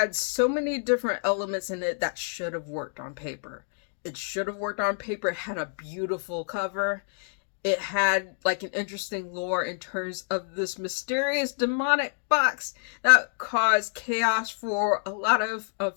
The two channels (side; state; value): right; silent; 60 dB below the other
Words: so many different elements in it that should have worked on paper. It should have worked on paper. It had a beautiful cover. It had like an interesting lore in terms of this mysterious demonic box that caused chaos for a lot of